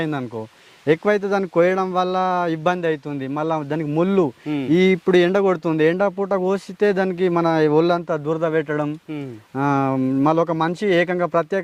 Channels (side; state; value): both; identical; correlation 1.00